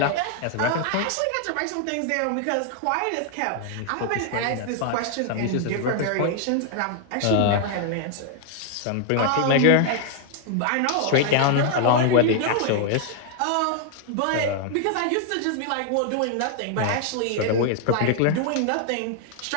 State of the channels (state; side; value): different; both; correlation 0.00